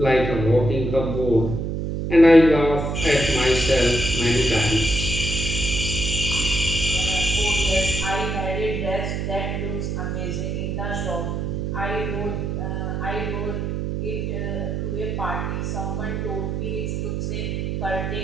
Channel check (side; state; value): right; noise; hum, 2 dB below the sound